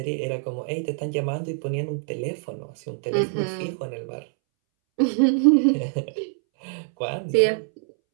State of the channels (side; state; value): left; silent; 62 dB below the other